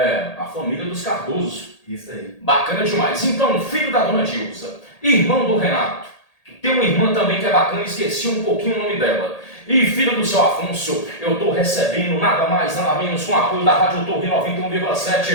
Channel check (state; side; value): late; right; 1.8 ms